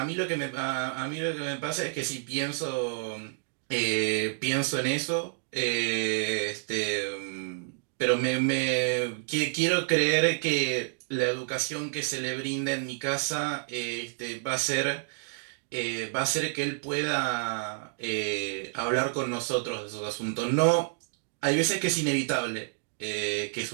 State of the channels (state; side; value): silent; left; digital silence